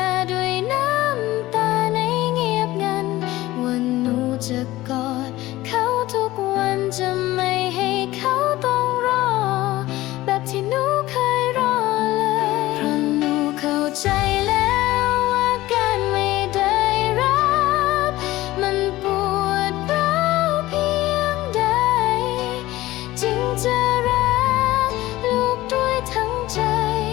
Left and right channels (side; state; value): right; quieter; 17.2 dB